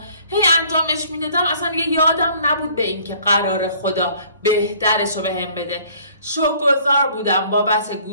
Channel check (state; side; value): inverted; both; correlation -0.56